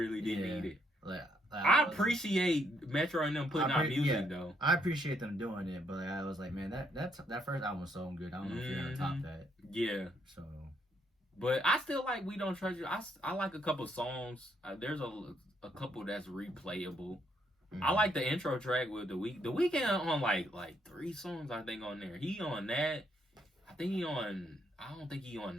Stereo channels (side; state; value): both; normal; correlation 0.73